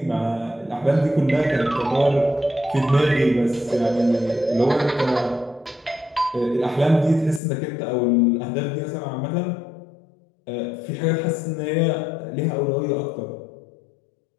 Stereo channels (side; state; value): right; drops out; at 7.4 s